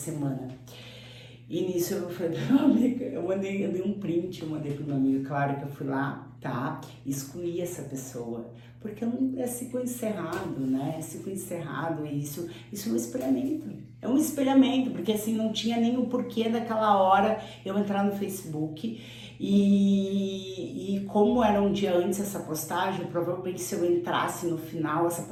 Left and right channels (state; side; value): identical; both; correlation 1.00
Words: E nisso eu falei pra minha amiga, eu dei um print, eu mandei pro meu amigo, claro que eu fui lá, tá? Excluí essa pessoa, porque não é ciclo encerrado, né? É ciclo encerrado, e isso é um espelhamento. É um espelhamento, porque assim, não tinha nem o porquê daquela hora eu entrar no Facebook. E como era um dia antes essa postagem, provavelmente se eu entrasse no final, essa